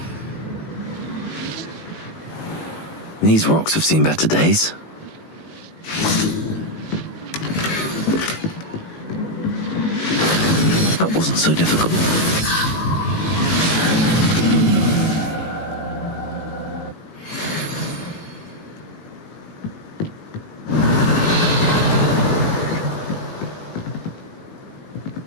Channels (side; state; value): right; late; 19 ms